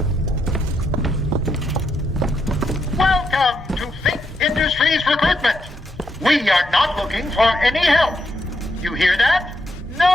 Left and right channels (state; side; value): normal; both; correlation 0.80